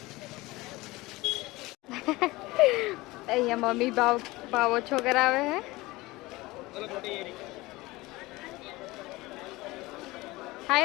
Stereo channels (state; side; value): quieter; right; 20.6 dB